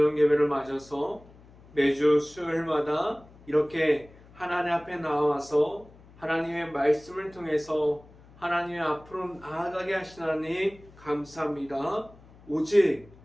예배를 맞아서 매주 수요일마다 이렇게 하나님 앞에 나와서 하나님의 말씀을 통해서 하나님의 앞으로 나아가게 하신 하나님 감사합니다. 오직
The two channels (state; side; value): noise; left; hum, 24 dB below the sound